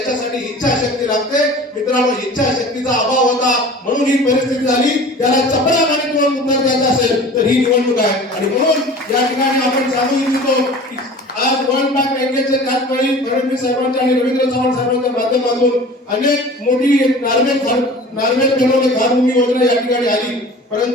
इच्छाशक्ती लागते. मित्रांनो, इच्छाशक्तीचा अभाव होता म्हणून ही परिस्थिती झाली. त्याला चपळामाने किंवा उत्तर द्यायचं असेल तर ही निवडणूक आहे. आणि म्हणून या ठिकाणी आपण सांगू इच्छितो की आज वर्ल्ड बँक बँकेचे त्याचवेळी फडणवीस साहेबांच्या आणि रवींद्र चव्हाण साहेबांच्या माध्यमातून अनेक मोठी नार्वेल बनवणे घरभूमी योजना या ठिकाणी आली.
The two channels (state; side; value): normal; both; correlation 0.41